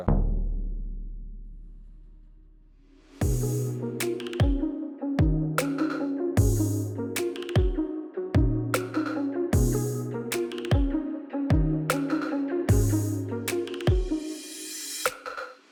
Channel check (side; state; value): both; identical; correlation 1.00